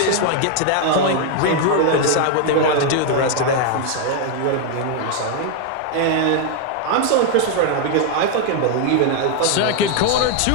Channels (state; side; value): different; both; correlation 0.01